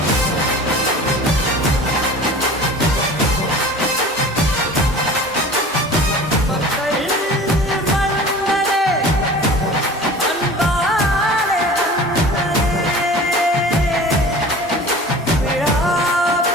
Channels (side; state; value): both; normal; correlation 0.41